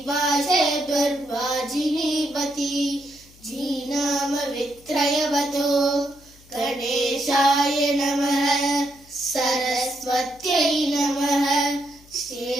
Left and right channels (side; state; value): left; noise; hum, 26 dB below the sound